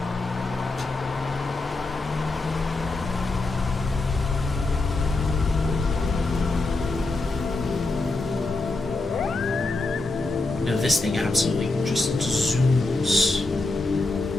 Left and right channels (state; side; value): quieter; right; 3.2 dB